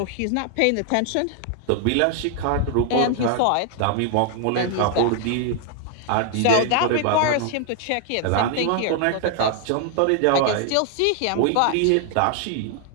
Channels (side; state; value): both; different; correlation 0.00